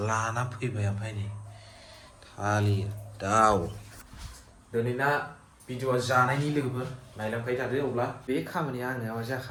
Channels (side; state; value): both; identical; correlation 1.00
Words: लाना फैबाय ओमफ्राय नै थालिर दाउ दिनैना भिडिअ'आ जानायनि लोगोफोर नायलांबाय थादो अब्ला बे खामानिया आंना मा